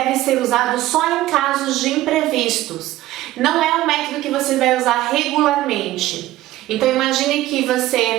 ser usado só em casos de imprevistos. Não é um método que você vai usar regularmente. Então imagine que você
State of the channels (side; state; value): left; quieter; 15.7 dB